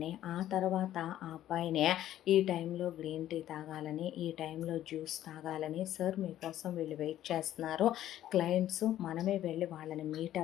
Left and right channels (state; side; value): quieter; right; 12.5 dB